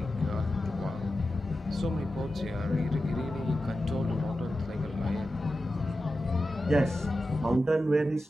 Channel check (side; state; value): both; normal; correlation 0.92